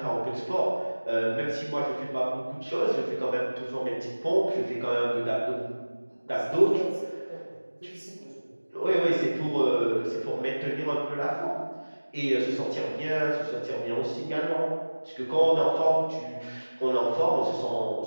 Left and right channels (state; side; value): inverted; both; correlation -1.00